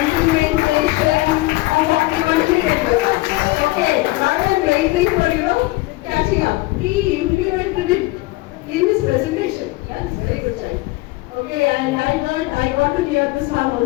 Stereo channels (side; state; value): right; quieter; 20.8 dB